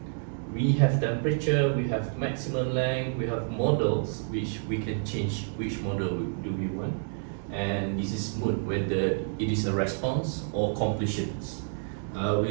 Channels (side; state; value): left; silent; digital silence